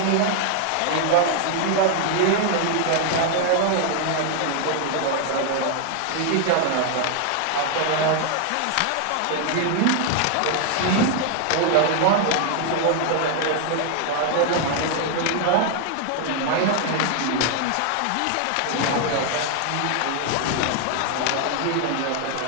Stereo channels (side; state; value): both; different; correlation 0.00